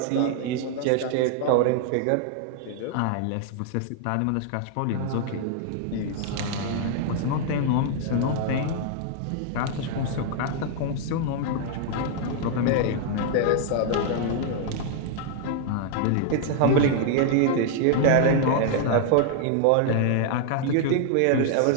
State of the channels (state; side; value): different; both; correlation 0.00